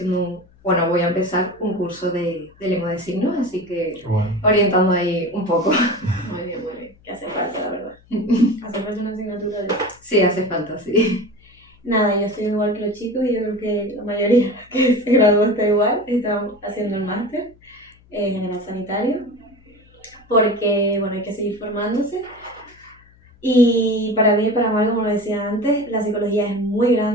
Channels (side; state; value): left; noise; hum, 29 dB below the sound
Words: bueno, voy a empezar un curso de lengua de signos, así que Bueno. orientando ahí un poco. Muy bien, muy bien. Que hace falta, la verdad. Hace falta una asignatura de... Sí, hace falta, sí. Nada, yo estoy igual que los chicos y yo creo que la mayoría que se graduó está igual. Estamos haciendo el máster general sanitario porque, bueno, hay que seguir formándose. Y para bien y para mal, como lo decía antes, la psicología es muy